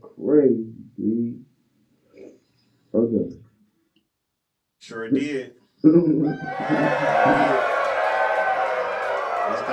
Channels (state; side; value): identical; both; correlation 1.00